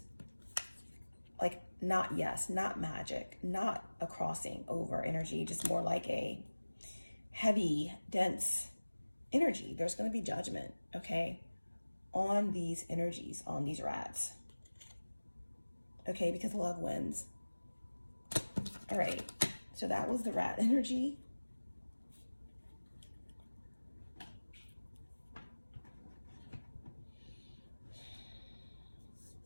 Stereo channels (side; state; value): both; inverted; correlation -1.00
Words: like not yes, not magic, not a crossing over energy, just more like a heavy, dense energy. There's going to be judgment, okay, on these energies, on these rats, okay, because love wins. All right, so that was the rat energy.